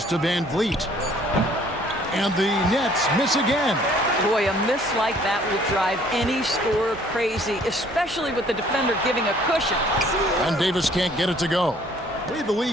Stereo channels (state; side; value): normal; both; correlation 0.58